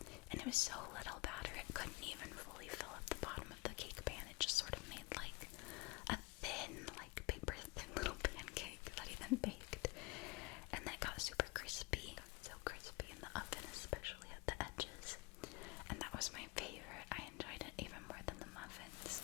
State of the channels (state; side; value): quieter; right; 25.4 dB